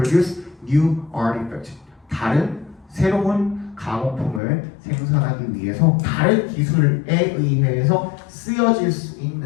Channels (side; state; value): right; drops out; at 4.4 s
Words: new artifact. 다른 새로운 가공품을 생산하기 위해서 다른 기술에 의해서 쓰여질 수